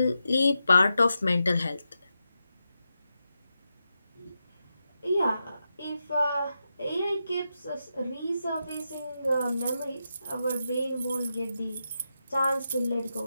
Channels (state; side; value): inverted; both; correlation -0.88